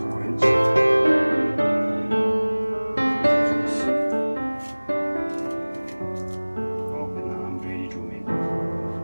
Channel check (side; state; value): both; inverted; correlation -1.00